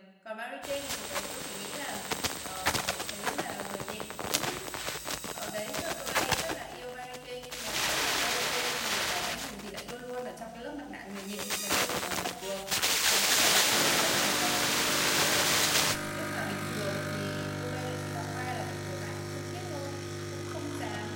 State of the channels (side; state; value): both; identical; correlation 1.00